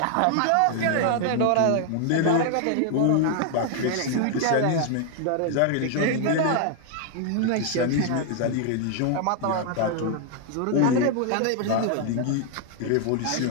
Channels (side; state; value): both; different; correlation 0.00